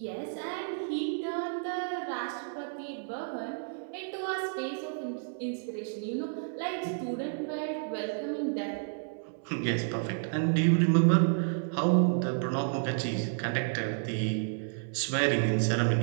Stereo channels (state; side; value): silent; left; 57 dB below the other